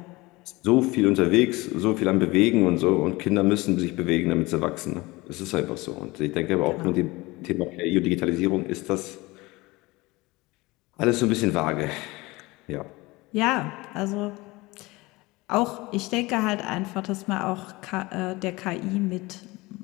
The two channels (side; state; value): right; quieter; 22.0 dB